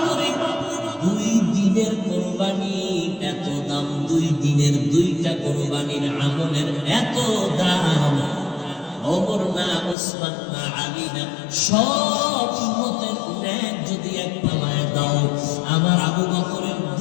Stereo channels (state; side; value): drops out; right; at 10.0 s